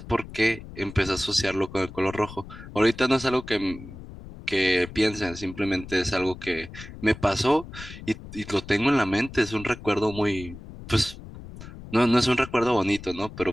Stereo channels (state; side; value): noise; left; rumble, 14 dB below the sound